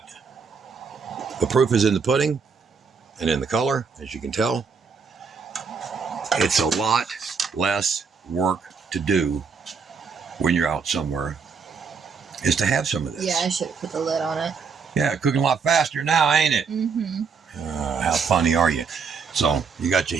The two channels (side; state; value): left; quieter; 5.5 dB